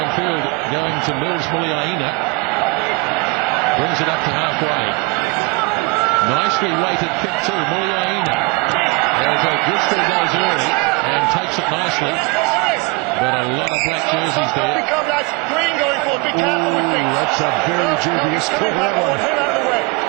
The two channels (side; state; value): left; quieter; 25.9 dB